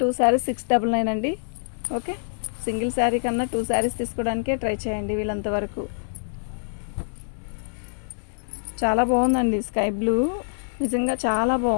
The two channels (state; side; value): silent; right; digital silence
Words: శారీస్ 699 అండి. ఓకే. సింగిల్ శారీ కన్నా 2 శారీస్ తీసుకోవడానికే ట్రై చేయండి వీళ్ళంతవరకు. చాలా బాగుందండి స్కై బ్లూ, నిజంగా చాలా